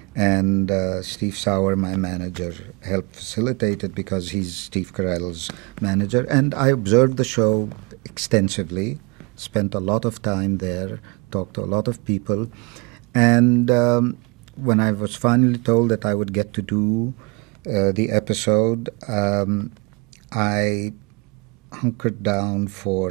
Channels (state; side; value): quieter; left; 29.6 dB